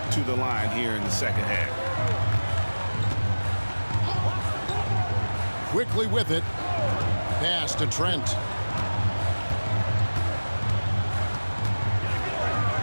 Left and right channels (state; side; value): inverted; both; correlation -1.00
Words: to the line here in the second half. Quickly with it. Pass to Trent.